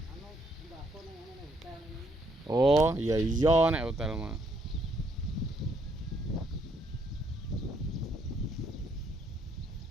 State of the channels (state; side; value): normal; both; correlation 0.70